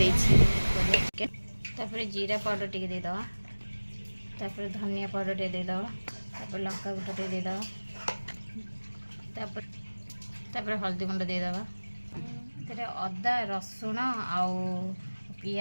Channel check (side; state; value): both; inverted; correlation -1.00